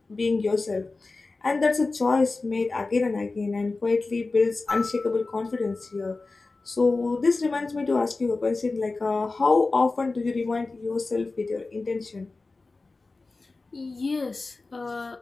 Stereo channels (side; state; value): right; quieter; 3.6 dB